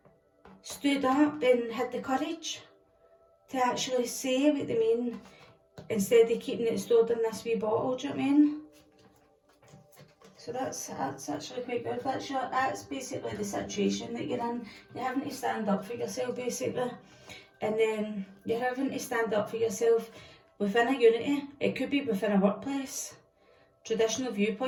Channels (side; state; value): both; identical; correlation 1.00